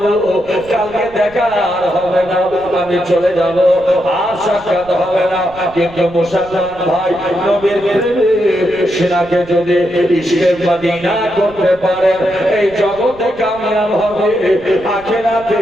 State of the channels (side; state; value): right; noise; rumble, 21 dB below the sound